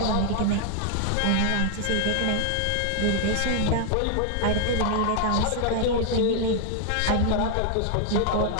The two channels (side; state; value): both; different; correlation 0.00